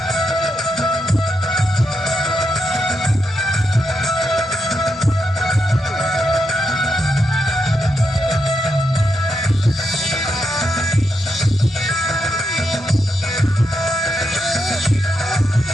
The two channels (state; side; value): normal; both; correlation 0.83